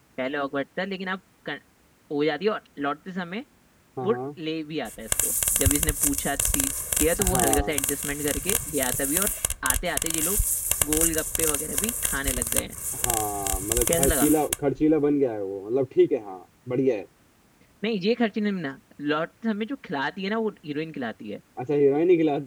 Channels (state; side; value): identical; both; correlation 1.00